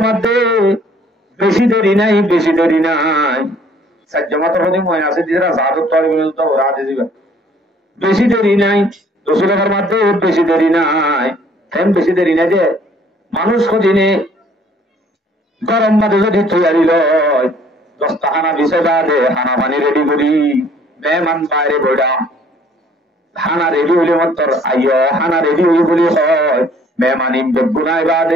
মধ্যে বেশি দেরি নাই সাজ্জামাতের হদি ময়না আছে দিরা জাদত তো বিল তো রাতে দিবা বেশি দেরি নাই রসুলের মাঝে বেশি দেরি নাই কেন বেশি দেরি নাই যে মানুষ কদিনে গরম মাঝে যদি তৈরি লয় 10টা হানা বিছাইবা দে হানা পানি রেডি করি মেহমান বাইরে বইডা হানা রেডি হইলে মাত্র আইয় হানা রেডি হই বলি হয় মেহমান ইম বেগুনাই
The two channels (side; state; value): both; normal; correlation 0.58